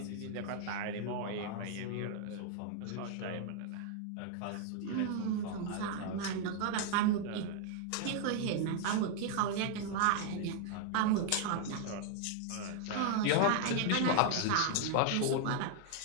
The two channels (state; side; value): different; both; correlation 0.00